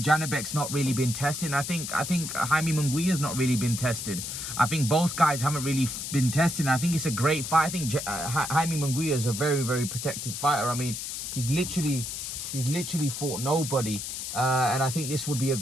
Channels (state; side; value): noise; left; hiss, 6 dB below the sound